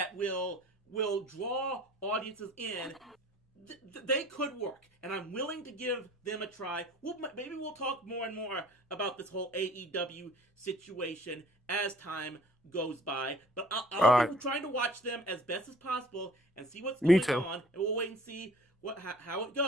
will draw audiences in. They could work, and I'm willing to give them a try. Maybe we'll talk more and more about this whole AEW situation as time goes by, but I'll be trying to watch them as best as possible and see what's going on, and we'll wait and see how it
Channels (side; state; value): both; normal; correlation 0.51